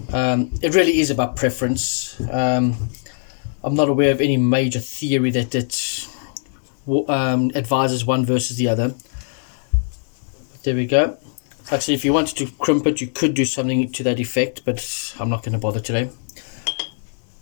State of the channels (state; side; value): silent; right; digital silence